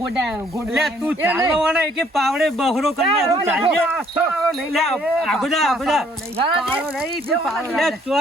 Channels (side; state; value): both; normal; correlation 0.64